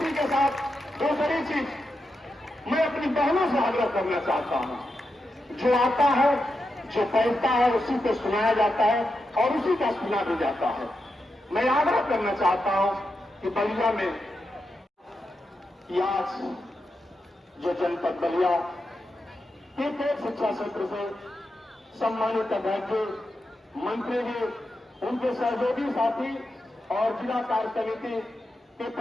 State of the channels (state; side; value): normal; both; correlation 0.87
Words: के साथ दूसरी चीज मैं अपनी बहनों से आग्रह करना चाहता हूं, जो आता है जो पहनता है उसी को सुनाया जाता है और उसी का सुना भी जाता है। मैं आग्रह करना चाहता हूं कि बलिया में आज जो जनपद बलिया एक शिक्षा क्षेत्र से सम्मानित अध्यक्ष मंत्री जी, उनके सहयोगी साथी और जिला कार्य समिति के